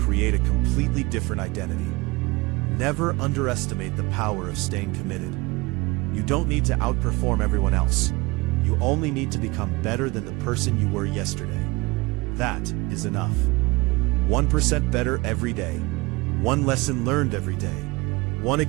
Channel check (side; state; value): left; quieter; 24.0 dB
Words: a completely different identity. Never underestimate the power of staying committed. You don't need to outperform everyone else. You only need to become better than the person you were yesterday. That is enough. 1% better every day. One lesson learned every day. One